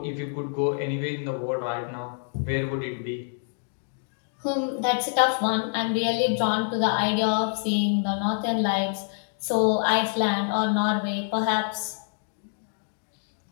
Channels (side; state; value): right; silent; digital silence